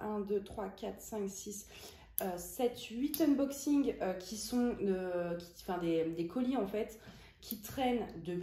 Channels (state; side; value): identical; both; correlation 1.00